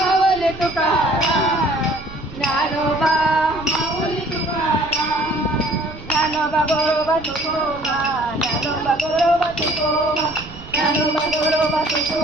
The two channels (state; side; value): noise; right; rumble, 16 dB below the sound